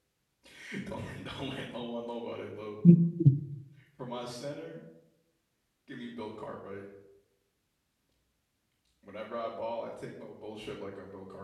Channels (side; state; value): both; identical; correlation 1.00